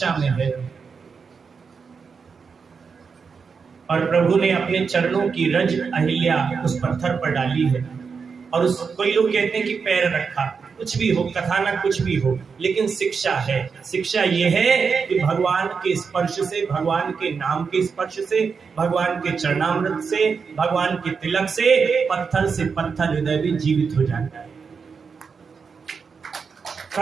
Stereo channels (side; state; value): left; quieter; 5.6 dB